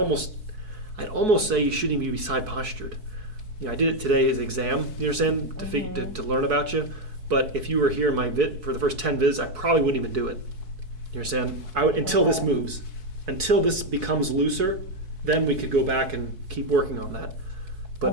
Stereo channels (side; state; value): left; late; 4.7 ms